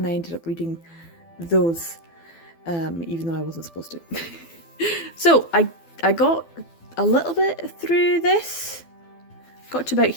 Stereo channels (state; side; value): late; right; 12 ms